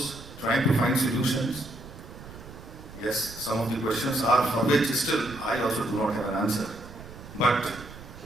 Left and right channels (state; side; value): noise; right; rumble, 16 dB below the sound